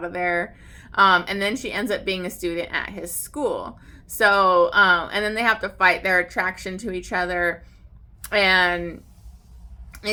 of there. And then she ends up being a student at his school. So and then they have to fight their attraction to each other, and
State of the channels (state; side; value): identical; both; correlation 1.00